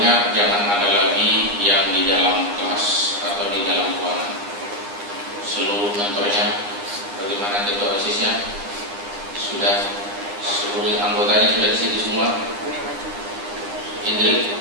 jangan ada lagi yang di dalam kelas atau di dalam ruangan. Seluruh mentornya, bagaimana ketua OSIS-nya, sudah seluruh anggotanya sudah di situ semua. Indri,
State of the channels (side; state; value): left; late; 9.8 ms